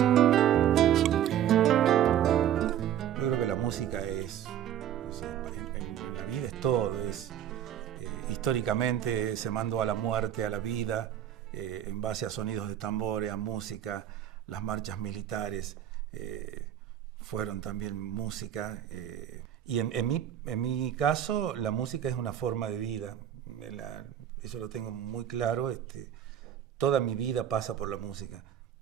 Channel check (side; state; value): left; quieter; 10.5 dB